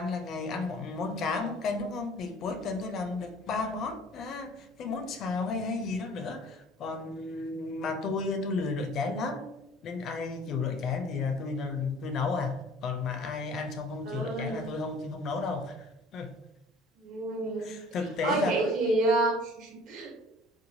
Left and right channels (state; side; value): normal; both; correlation 0.49